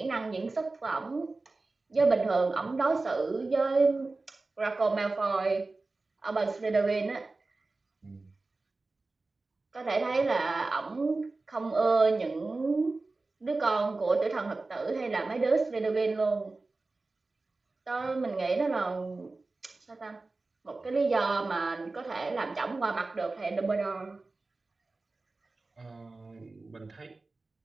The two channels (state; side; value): quieter; left; 3.5 dB